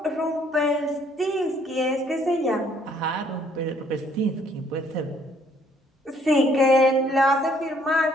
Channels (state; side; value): normal; both; correlation 0.64